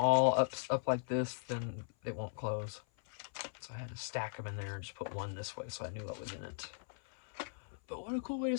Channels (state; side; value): silent; right; 52 dB below the other